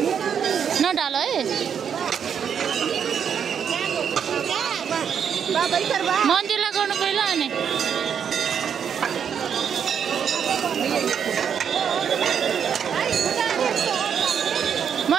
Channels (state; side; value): quieter; left; 7.7 dB